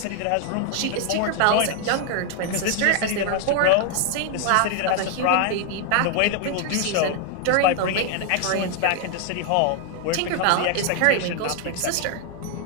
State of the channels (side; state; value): both; different; correlation 0.00